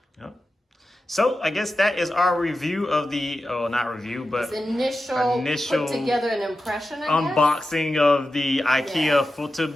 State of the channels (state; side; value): normal; both; correlation 0.92